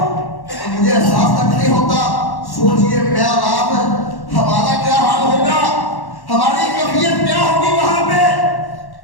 مجھے احساس تک نہیں ہوتا۔ سوچئے میں اور آپ، ہمارا کیا حال ہوگا، ہماری کیفیت کیا ہوگی وہاں پہ۔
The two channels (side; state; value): right; late; 1.1 ms